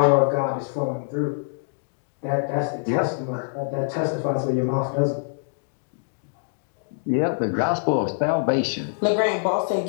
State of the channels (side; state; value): right; silent; digital silence